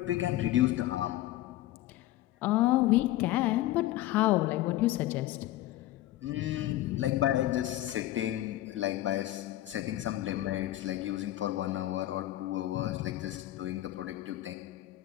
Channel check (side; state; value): right; quieter; 15.1 dB